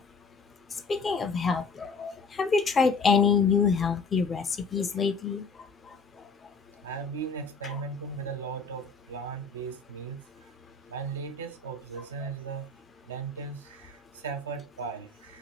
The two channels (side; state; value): right; quieter; 4.2 dB